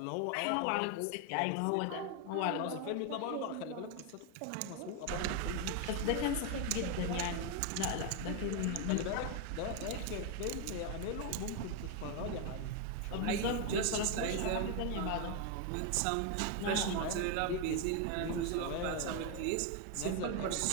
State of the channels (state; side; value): different; both; correlation 0.01